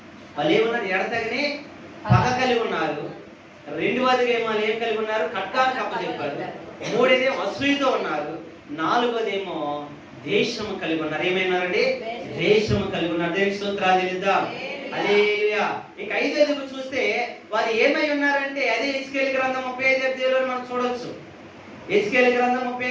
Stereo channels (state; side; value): identical; both; correlation 1.00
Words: వాళ్ళు ఏమన్నారు? ఎడతగని పగ కలిగి ఉన్నారు. రెండవదిగేమో వాళ్ళు ఏం కలిగి ఉన్నారు? ఖడ్గాన్ని కప్పచెప్పారు. మూడేదేమో అసూయతో ఉన్నారు. నాలుగోదేమో దేశము కలిగి ఉన్నారు. ఏమైనారండి? దేశము కలిగి ఉన్నారు. దేవునికి స్తోత్రాలు చెల్లిద్దాం. హల్లెలూయా. ఇంకా ఐదోది చూస్తే వారు ఏమై ఉన్నారంటే అదే హెజ్కేలు గ్రంథం 35వ అధ్యాయంలో మనం చూడొచ్చు. హెజ్కేలు గ్రంథం